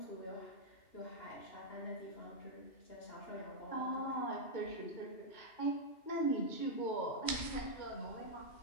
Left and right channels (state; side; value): late; right; 2.4 ms